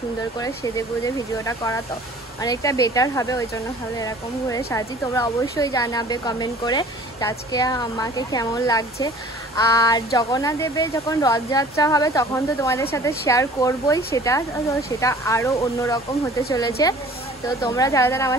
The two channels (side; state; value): both; normal; correlation 0.48